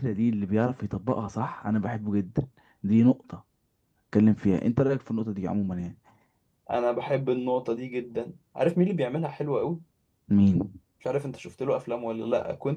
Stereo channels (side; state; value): both; identical; correlation 1.00